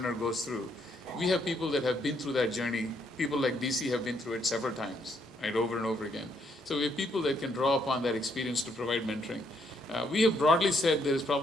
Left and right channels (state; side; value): normal; both; correlation 0.73